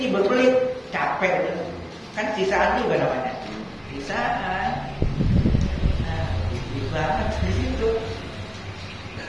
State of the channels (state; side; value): identical; both; correlation 1.00